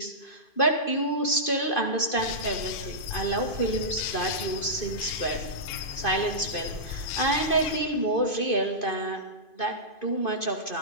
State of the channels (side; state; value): right; late; 2.5 ms